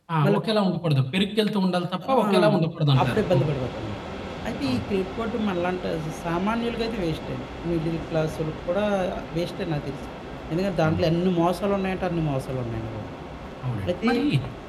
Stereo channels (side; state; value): both; identical; correlation 1.00